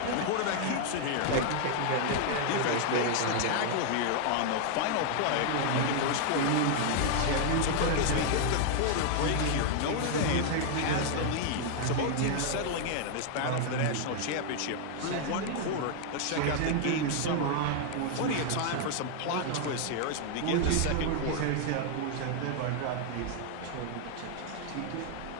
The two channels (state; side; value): different; both; correlation 0.00